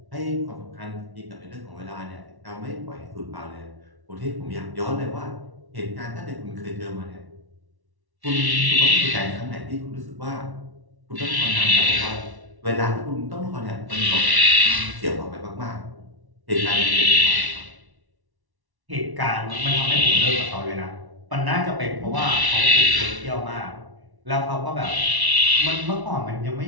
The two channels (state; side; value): late; left; 1.1 ms